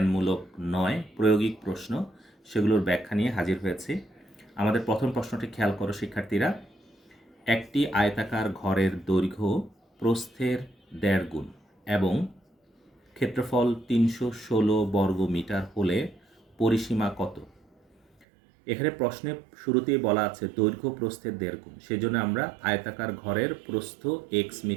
নয়, প্রায়োগিক প্রশ্ন, সেগুলোর ব্যাখ্যা নিয়ে হাজির হয়েছি। আমাদের প্রথম প্রশ্নটি খেয়াল করো শিক্ষার্থীরা। একটি আয়তাকার ঘরের দৈর্ঘ্য প্রস্থের 1.5 গুণ এবং ক্ষেত্রফল 316 বর্গ মিটার হলে পরিসীমা কত? এখানে প্রশ্নে শুরুতেই বলা আছে দৈর্ঘ্য প্রস্থের 1.5 গুণ, সেজন্য আমরা আয়তাকার ঘরের প্রস্থ x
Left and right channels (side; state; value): left; drops out; at 18.2 s